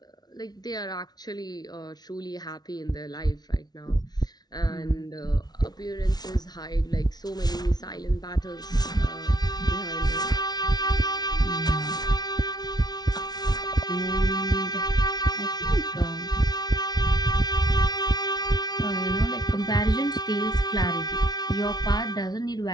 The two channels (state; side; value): late; right; 0.19 ms